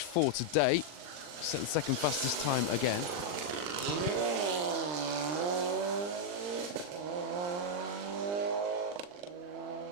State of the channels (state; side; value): late; left; 40 ms